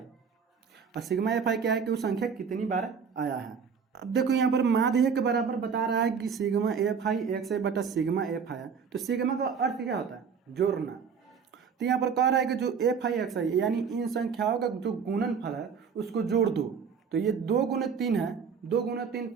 और सिग्मा एफ आई क्या है कि वो संख्या कितनी बार आया है। अब देखो यहाँ पर माध्य के बराबर बता रहा है कि सिग्मा एफ आई एक्स आई बटा सिग्मा एफ आई। तो सिग्मा का अर्थ क्या होता है? जोड़ना। तो यहाँ पर कह रहा है कि जो एफ आई एक्स आई यानी इन संख्याओं का जो गुणनफल है उसको जोड़ दो। तो ये 2 गुने 3 है, 2 गुने 3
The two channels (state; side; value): quieter; left; 6.3 dB